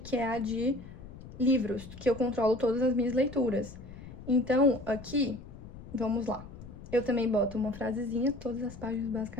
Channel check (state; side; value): noise; left; rumble, 15 dB below the sound